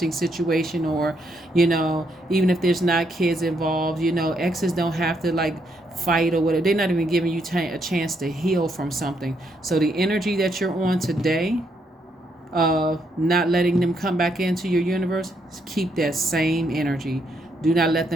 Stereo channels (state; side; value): normal; both; correlation 0.76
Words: situation, or, even if there's not kids involved, exes don't have to like fight or whatever. They're not even giving you a chance to heal from something. So the energy that you're on today, not letting them come back into your universe, keep that same energy. Do not let